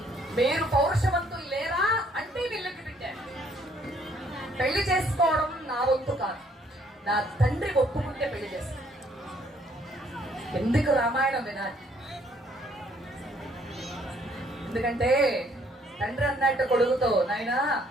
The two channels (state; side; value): normal; both; correlation 0.65